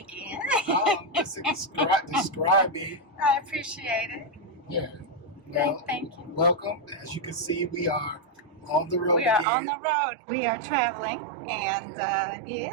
Just describe me. I appreciate it. Yeah. Well, Thank you. welcome. As you can see, we are on the road. We are again. on the road. We are traveling, and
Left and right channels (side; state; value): left; drops out; at 9.5 s